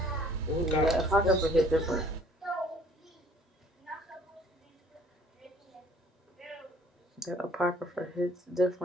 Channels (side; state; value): both; normal; correlation 0.56